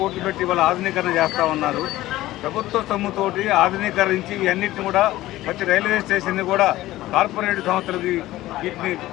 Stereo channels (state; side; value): quieter; right; 16.2 dB